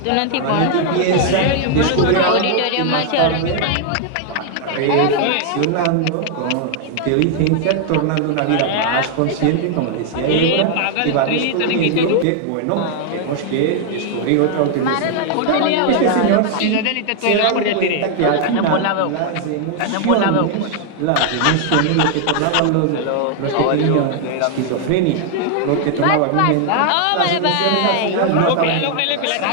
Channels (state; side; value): different; both; correlation 0.00